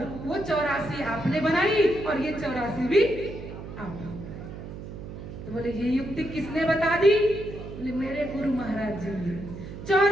वो 84 आपने बनाई और ये 84 भी आप। तो बोले ये युक्ति किसने बता दी? बोले मेरे गुरु महाराज जी ने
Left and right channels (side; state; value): right; noise; hum, 11 dB below the sound